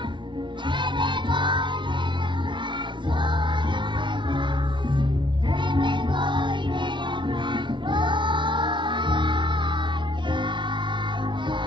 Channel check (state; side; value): late; left; 0.24 ms